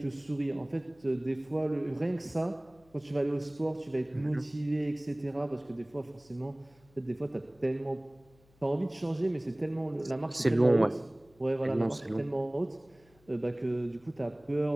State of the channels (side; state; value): left; noise; hum, 30 dB below the sound